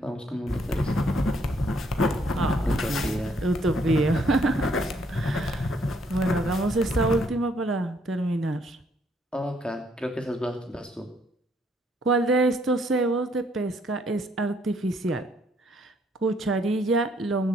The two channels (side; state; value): both; normal; correlation 0.68